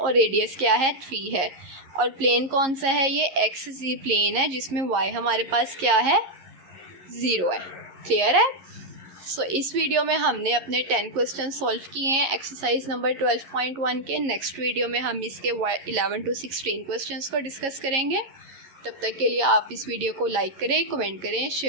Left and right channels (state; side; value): late; left; 11 ms